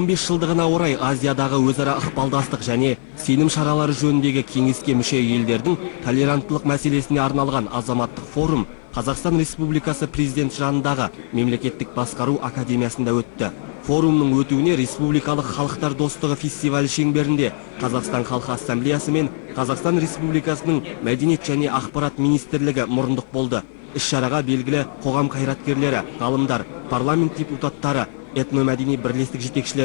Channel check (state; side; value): silent; right; 56 dB below the other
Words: жылдығына орай Азиядағы өзара ықпалдастық және сенім шаралары жөніндегі кеңеске мүше елдердің толеранттылық мәселесіне арналған азаматтық форум Қазақстан Республикасы президент жанындағы мемлекеттік басқару академиясында өтті. Форумның өтуіне Республикалық халықтар достығы фестивалі шеңберінде Қазақстан халқы ассамблеясы мен Қазақстан Республикасының мәдениет және ақпарат министрлігі мұрындық болды. Іс-шараға белгілі қоғам қайраткерлері, ғалымдар, парламент депутаттары, этномәдени бірлестік